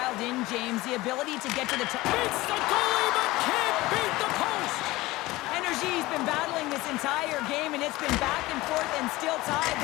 in, James. The ability to get to the top. Beats the goalie, but can't beat the post. Energy's been battling this entire game, and it's been back and forth and still tied.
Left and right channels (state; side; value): quieter; right; 19.4 dB